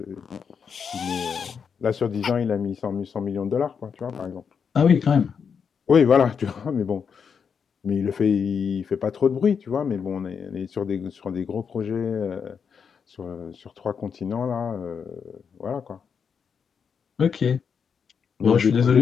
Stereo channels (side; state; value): right; quieter; 6.5 dB